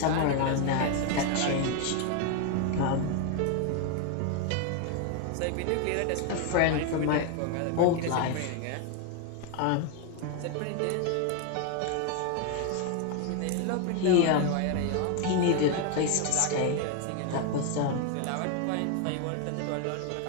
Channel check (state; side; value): different; both; correlation 0.01